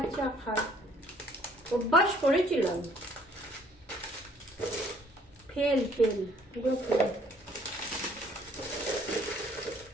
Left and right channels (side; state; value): both; normal; correlation 0.60